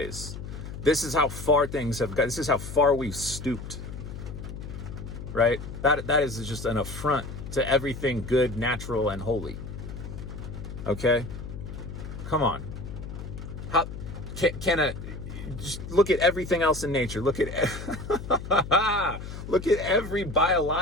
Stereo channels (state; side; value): noise; left; hum, 9 dB below the sound